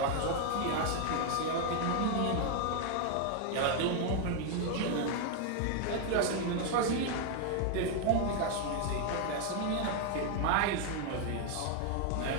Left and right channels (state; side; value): different; both; correlation 0.00